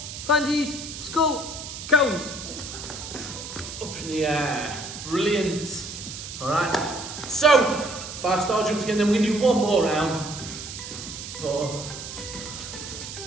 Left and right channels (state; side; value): noise; right; hiss, 9 dB below the sound